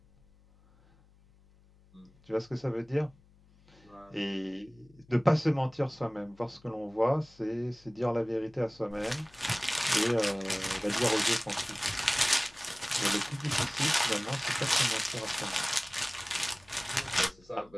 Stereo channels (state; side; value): noise; left; hum, 28 dB below the sound